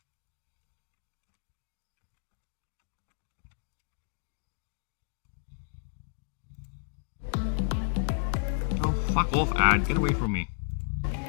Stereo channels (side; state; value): right; silent; 56 dB below the other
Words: Oh, fuck off, ad. Get away from me.